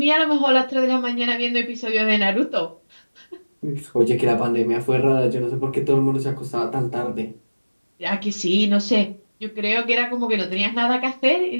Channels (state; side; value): inverted; both; correlation -1.00